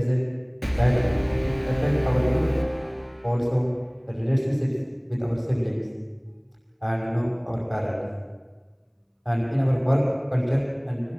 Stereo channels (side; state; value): both; identical; correlation 1.00